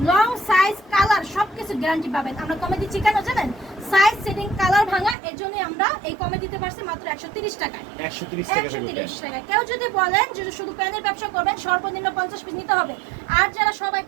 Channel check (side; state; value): left; drops out; at 5.2 s